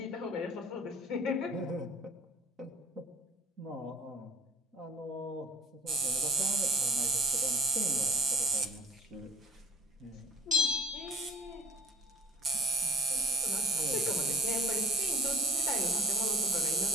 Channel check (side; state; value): both; normal; correlation 0.58